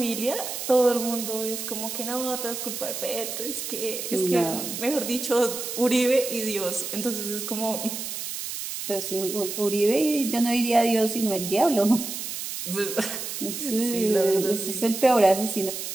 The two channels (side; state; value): right; noise; hiss, 6 dB below the sound